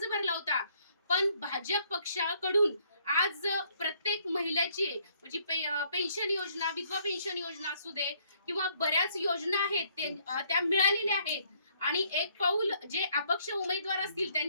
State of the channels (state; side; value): inverted; both; correlation -0.67